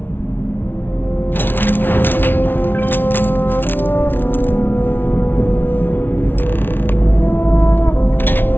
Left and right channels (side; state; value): right; late; 0.10 ms